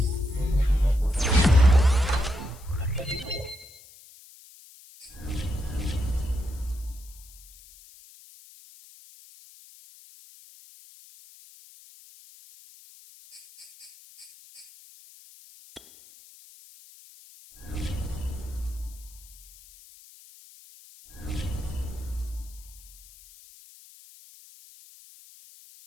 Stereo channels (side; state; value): left; noise; hiss, 22 dB below the sound